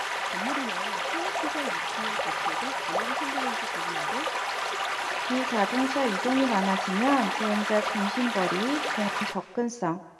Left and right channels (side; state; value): both; identical; correlation 1.00